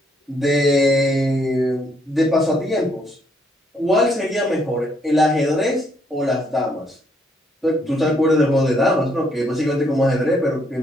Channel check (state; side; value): normal; both; correlation 0.71